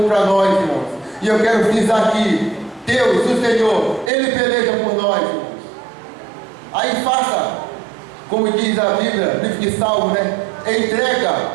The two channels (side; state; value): left; drops out; at 4.1 s